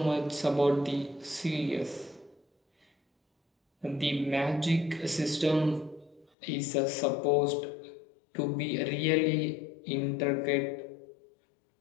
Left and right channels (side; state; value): right; drops out; at 6.2 s